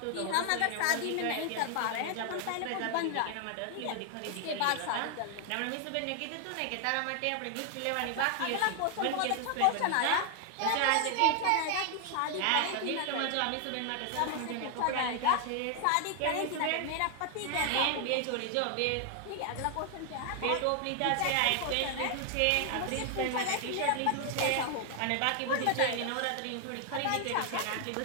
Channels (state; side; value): different; both; correlation 0.00